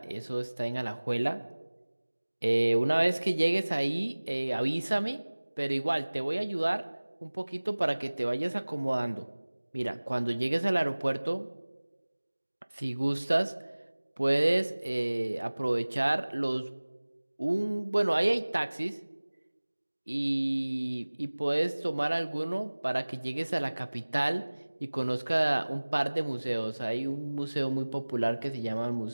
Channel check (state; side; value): inverted; both; correlation -1.00